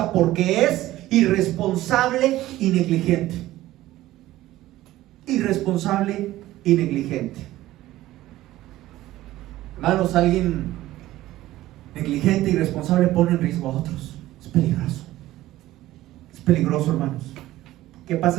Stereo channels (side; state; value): left; quieter; 15.7 dB